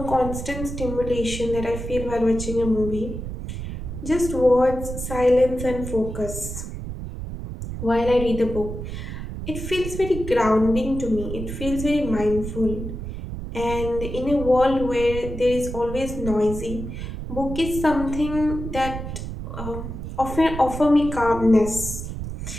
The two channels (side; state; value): right; noise; rumble, 7 dB below the sound